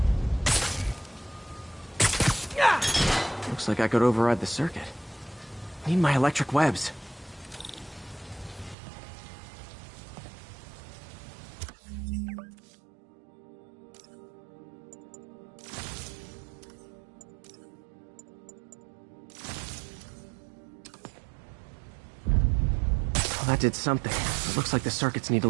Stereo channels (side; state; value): left; drops out; at 8.8 s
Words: Looks like I could override the circuit. Need my electric webs. Well, that did something. It looks like the circuits need a